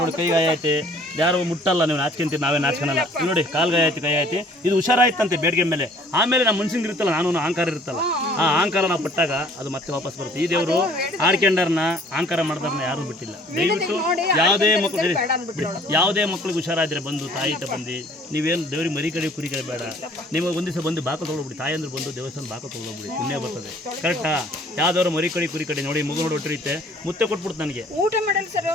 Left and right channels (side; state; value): both; normal; correlation 0.55